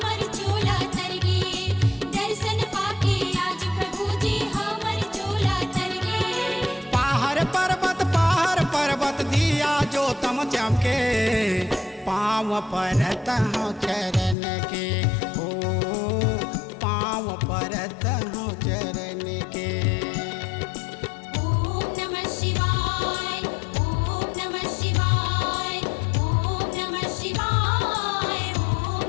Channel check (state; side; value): drops out; right; at 14.4 s